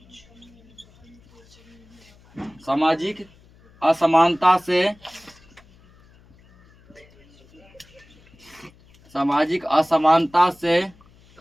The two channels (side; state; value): left; noise; hum, 28 dB below the sound